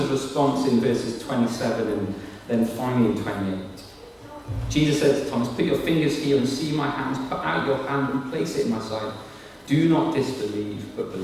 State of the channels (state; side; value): identical; both; correlation 1.00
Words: response in verses 27 and then finally in 28. Jesus said to Thomas, "Put your fingers here and see my hands. Put out your hand and place it in my side. Do not disbelieve, but